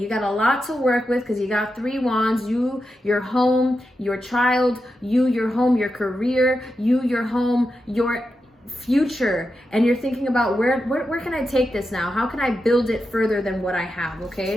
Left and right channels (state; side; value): normal; both; correlation 0.88